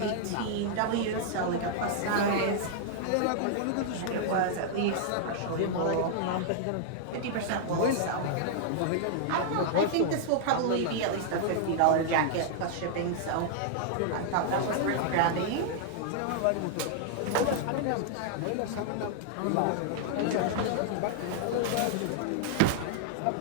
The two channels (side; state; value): both; different; correlation -0.01